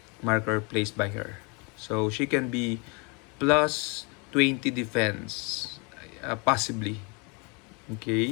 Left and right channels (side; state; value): right; quieter; 31.6 dB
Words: marker placed by her. So she can be plus 20 defense, possibly.